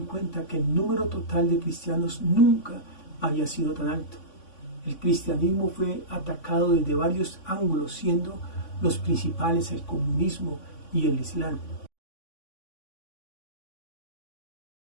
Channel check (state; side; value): late; right; 3.5 ms